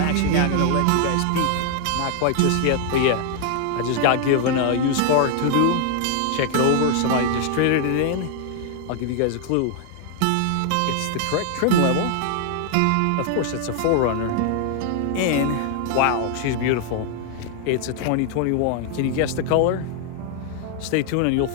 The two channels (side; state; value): both; different; correlation 0.00